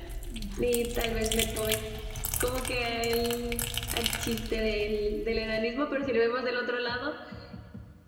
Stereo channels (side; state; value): both; identical; correlation 1.00